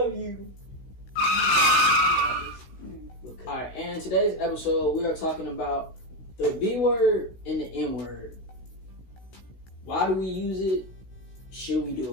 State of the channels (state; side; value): late; right; 16 ms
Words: you. Alright, and in today's episode, we are talking about the B word and the N word. Why do we use it? Should we